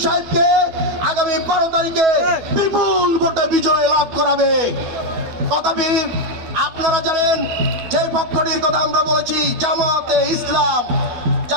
সাহেবকে আগামী 12 তারিখে বিপুল ভোটে বিজয় লাভ করাবে। তথাপি আপনারা জানেন যে পক্ষটির কথা আমরা বলেছি, জামাতে ইসলাম।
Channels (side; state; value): left; late; 12 ms